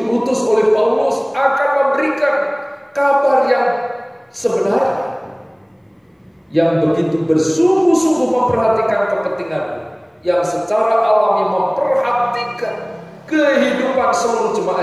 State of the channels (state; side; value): identical; both; correlation 1.00